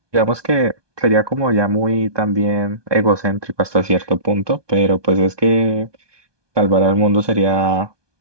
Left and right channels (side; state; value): left; late; 1.2 ms